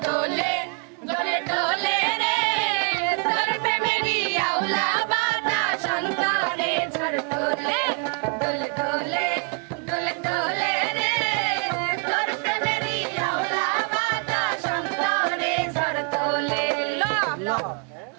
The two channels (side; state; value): left; quieter; 38.4 dB